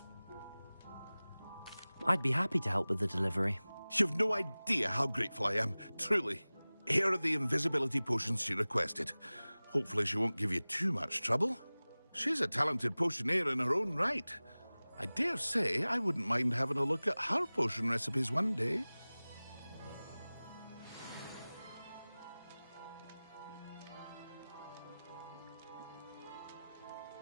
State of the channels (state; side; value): inverted; both; correlation -0.99